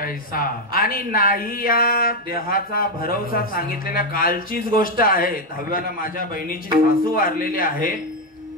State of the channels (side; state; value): both; normal; correlation 0.05